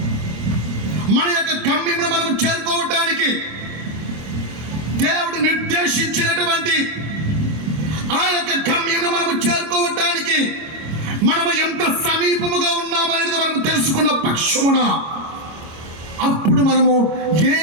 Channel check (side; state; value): left; late; 25 ms